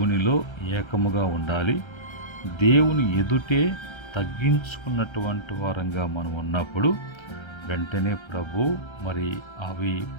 ఏకముగా ఉండాలి. దేవుని ఎదుటే తగ్గించుకున్నటువంటి వారంగా మనం ఉన్నప్పుడు వెంటనే ప్రభు అవి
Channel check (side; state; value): right; late; 1.3 ms